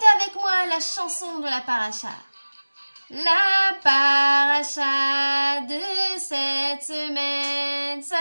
avec moi la chanson de la paracha. La paracha de cette semaine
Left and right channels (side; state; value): both; inverted; correlation -1.00